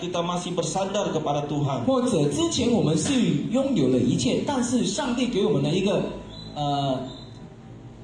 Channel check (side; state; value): both; identical; correlation 1.00